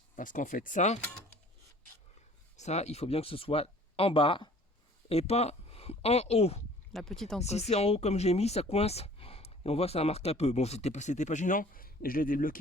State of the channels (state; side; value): normal; both; correlation 0.50